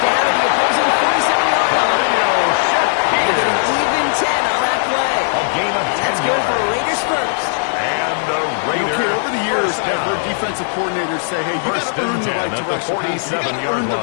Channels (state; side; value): silent; right; 62 dB below the other